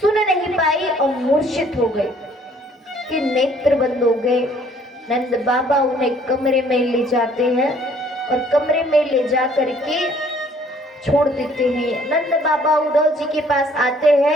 नहीं पाई और मूर्छित हो गई कि नेत्र बंद हो गए। नंद बाबा उन्हें कमरे में ले जाते हैं और कमरे में ले जा करके छोड़ देते हैं। नंद बाबा उद्धव जी के पास आते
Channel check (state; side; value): normal; both; correlation 0.59